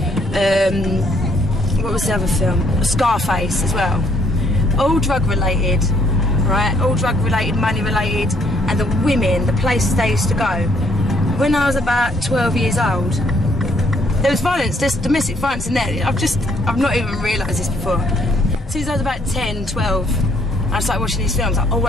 what was the other film? Scarface as well. All drug related, right? All drug related, money related, and the women, the places they used to go. When I was about 12 years old, there was violence, there's domestic violence in there. I've not even realised this before. Since I was about 10, 12, I started watching these films. I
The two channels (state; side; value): normal; both; correlation 0.67